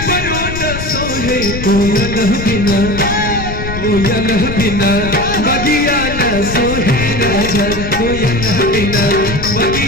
न सोहे कोयल बिना, कोयल बिना बगिया न सोहे राजा, कोयल बिना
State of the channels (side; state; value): left; noise; rumble, 7 dB below the sound